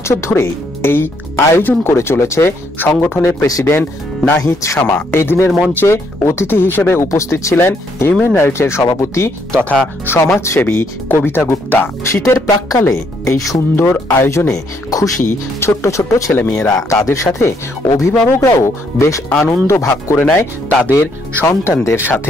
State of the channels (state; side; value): normal; both; correlation 0.71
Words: ধরে এই আয়োজন করে চলেছে সংগঠনের প্রেসিডেন্ট নাহিদ শামা। এই দিনের মঞ্চে অতিথি হিসেবে উপস্থিত ছিলেন হিউম্যান রাইটসের সভাপতি তথা সমাজসেবী কবিতা গুপ্তা। শীতের প্রাক্কালে এই সুন্দর আয়োজনে খুশি ছোট্ট ছোট্ট ছেলেমেয়েরা। তাদের সাথে অভিভাবকরাও বেশ আনন্দ ভাগ করে নেয় তাদের সন্তানদের